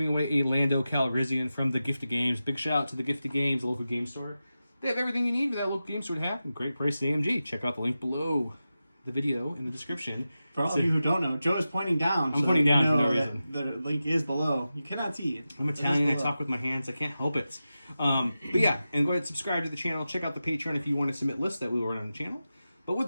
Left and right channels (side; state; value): both; inverted; correlation -0.93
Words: away a Lando Calrissian from the Gift of Games. Big shout out to the Gift of Games, the local game store. They have everything you need for that local game store to have. Great price at AMG. Check out the link below the video in the description. For all of you who don't know, Joe is pointing down. I'm pointing down for no reason. The link is below. You cannot see it. I'm Italian. I talk with my hands. I can't help it. But yeah, and go ahead and subscribe to the channel. Check out the Patreon if you want to submit lists that we will run on the channel. But with